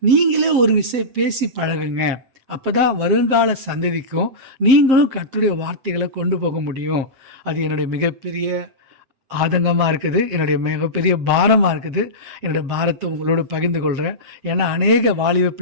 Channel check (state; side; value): late; left; 7.5 ms